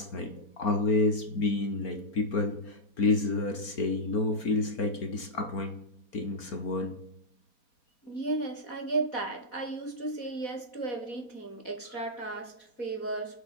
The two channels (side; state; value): right; late; 4.4 ms